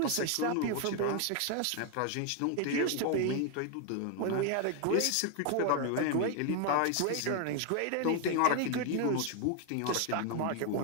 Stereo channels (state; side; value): different; both; correlation 0.01